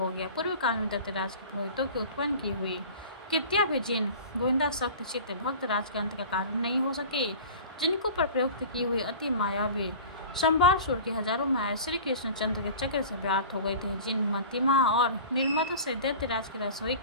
गया। पूर्व काल में दैत्यराज के पुरोहितों की उत्पन्न की हुई कृत्या भी जिन गोविंदा सख्त चित्त भक्त राज के अंत का कारण नहीं हो सके, जिनको पर प्रयुक्त की हुई अति मायावी संभारसुर की हजारों माया श्री कृष्णचंद्र के चक्र से व्याप्त हो गए थे, जिन मतिमा और निर्मत से दैत्यराज के रसोई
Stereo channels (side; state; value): both; inverted; correlation -0.39